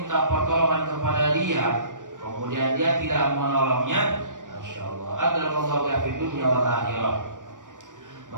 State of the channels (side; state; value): left; late; 0.87 ms